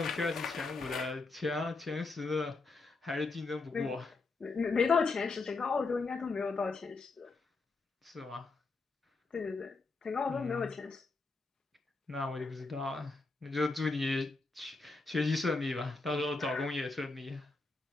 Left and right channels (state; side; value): quieter; right; 3.8 dB